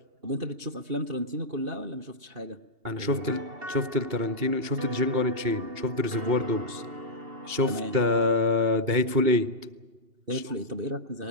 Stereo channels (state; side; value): late; left; 2.8 ms